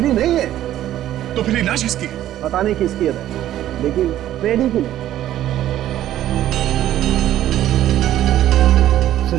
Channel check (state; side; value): quieter; left; 12.7 dB